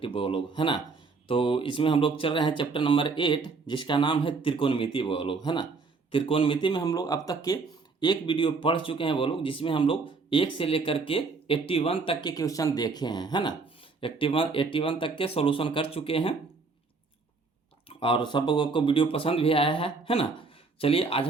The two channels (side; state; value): left; quieter; 4.3 dB